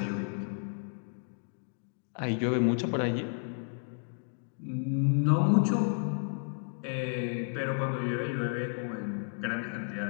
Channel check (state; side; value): silent; right; 56 dB below the other